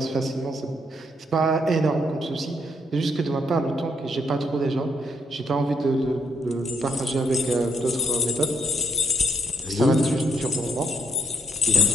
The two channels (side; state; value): both; normal; correlation 0.72